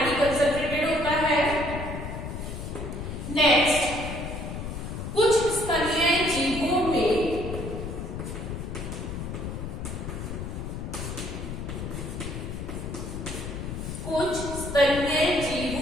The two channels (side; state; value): left; noise; rumble, 6 dB below the sound